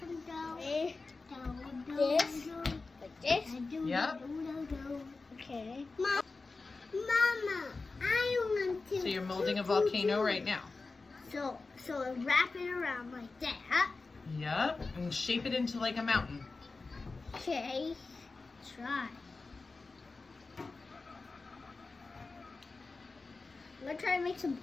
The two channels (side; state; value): right; quieter; 3.8 dB